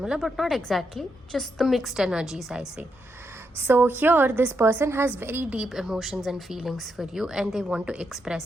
but not exactly, just the mixed energies, I say. So here this person has very deep emotions and feelings for you, and they want to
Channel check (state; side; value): normal; both; correlation 0.81